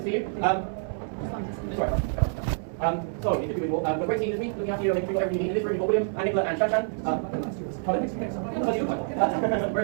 see you. Sorry. So, good to be with you all. We're great team this week, looking after you, making sure whatever you need in this room. You've got William and Nicola and Shanshan.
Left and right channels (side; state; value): left; silent; 60 dB below the other